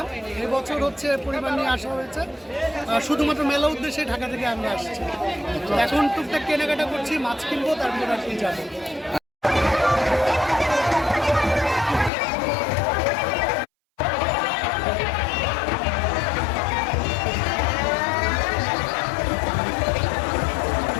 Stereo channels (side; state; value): right; drops out; at 12.1 s